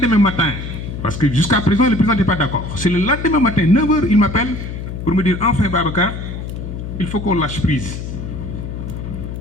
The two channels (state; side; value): noise; left; hum, 7 dB below the sound